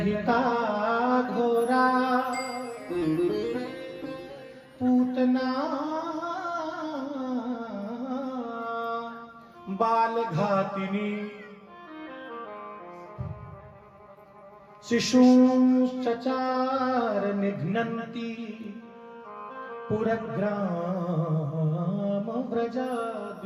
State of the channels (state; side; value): identical; both; correlation 1.00